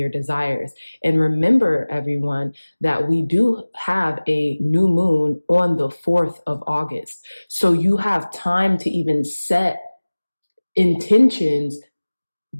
desires. And remember, everyone, that we do have a new moon on the 4th of August. So you have time to even set intentions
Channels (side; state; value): both; inverted; correlation -1.00